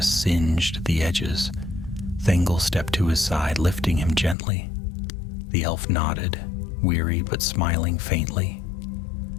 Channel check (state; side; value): drops out; right; at 4.4 s